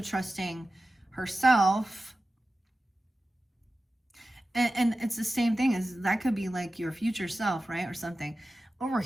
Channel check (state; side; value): normal; both; correlation 0.94